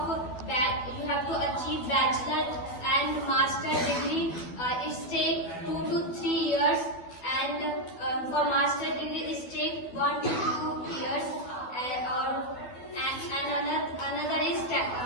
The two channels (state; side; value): late; right; 12 ms